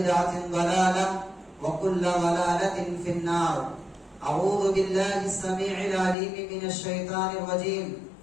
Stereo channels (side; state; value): right; drops out; at 6.2 s